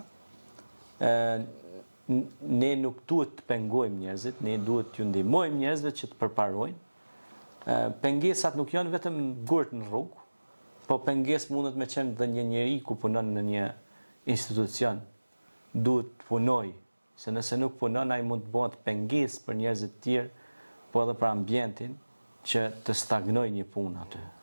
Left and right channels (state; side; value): inverted; both; correlation -1.00